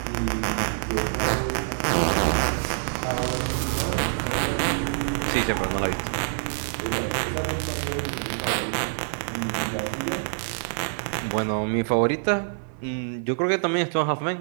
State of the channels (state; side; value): silent; left; 61 dB below the other